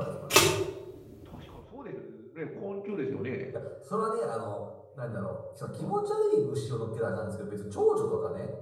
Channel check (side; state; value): both; identical; correlation 1.00